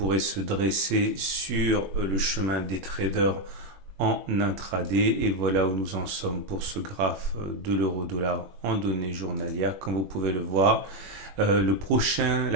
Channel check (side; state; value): left; late; 21 ms